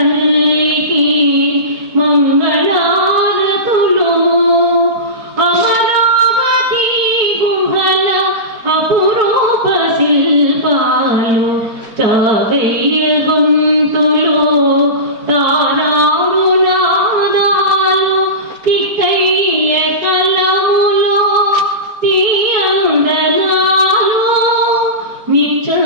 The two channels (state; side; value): late; left; 4.3 ms